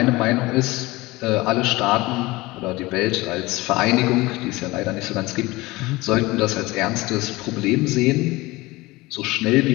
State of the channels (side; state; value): right; quieter; 21.0 dB